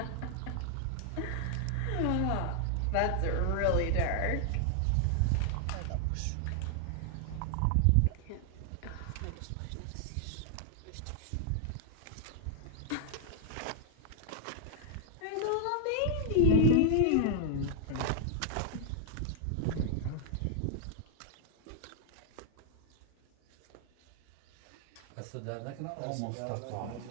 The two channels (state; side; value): different; both; correlation -0.01